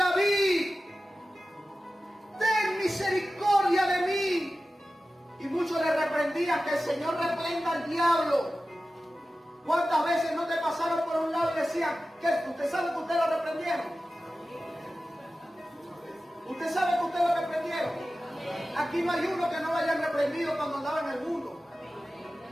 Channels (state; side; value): normal; both; correlation 0.94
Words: ten misericordia de mí. Y muchos le reprendían: que el Señor reprenda al diablo. ¿Cuántas veces no te pasaron por un lado y decían: que usted sabe que usted lo reprendieron? ¿Usted sabe que usted lo reprendieron? Aquí no hay uno que no lo hayan reprendido cuando andaba en el mundo.